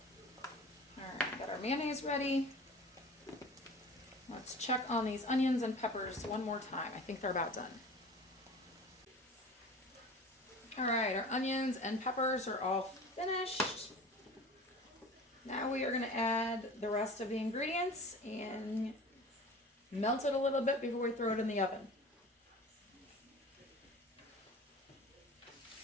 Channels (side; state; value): both; normal; correlation 0.39